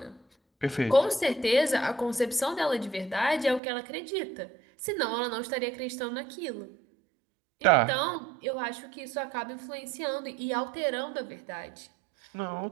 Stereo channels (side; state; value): left; drops out; at 3.6 s